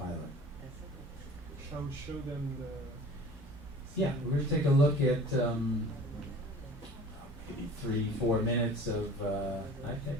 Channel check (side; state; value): both; normal; correlation 0.44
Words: Shall we show them the... Yeah, we're going to take a look at maybe 3-4 minutes of